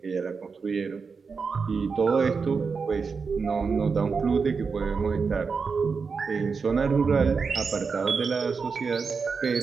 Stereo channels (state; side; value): quieter; left; 5.2 dB